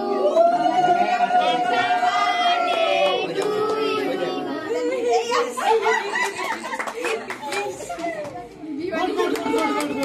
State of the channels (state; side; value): identical; both; correlation 1.00